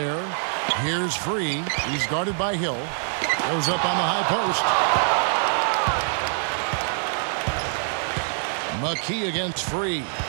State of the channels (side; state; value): left; silent; 62 dB below the other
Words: Here's Free. He's guarded by Hill. Goes up on the high post. McKee against Free.